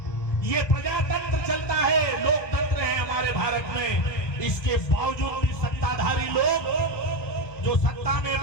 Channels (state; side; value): late; right; 1.2 ms